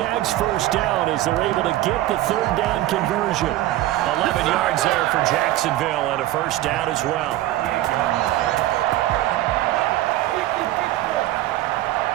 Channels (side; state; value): left; quieter; 15.2 dB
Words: first down as they're able to get the third down conversion. 11 yards there for Jacksonville and a first down as well.